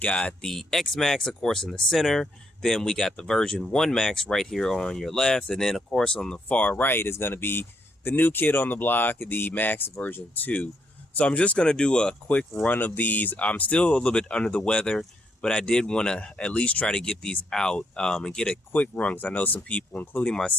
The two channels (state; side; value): normal; both; correlation 0.75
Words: the X-Maxx, of course, in the center. Then we got the version 1 Maxx right here on your left. And then, of course, on the far right is going to be the new kid on the block, the Maxx version 2. So I'm just going to do a quick run of these. I'm still a little bit under the weather, but I did want to at least try to get these out and get a quick run, because I know some people, including